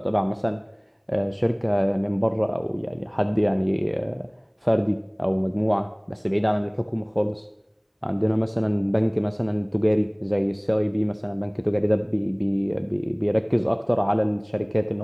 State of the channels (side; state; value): both; identical; correlation 1.00